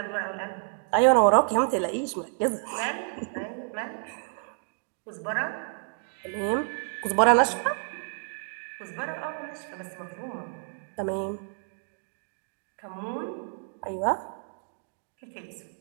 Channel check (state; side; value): silent; left; 58 dB below the other